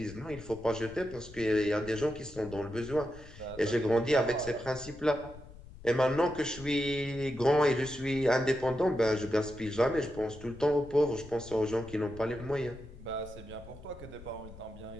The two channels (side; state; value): left; noise; rumble, 17 dB below the sound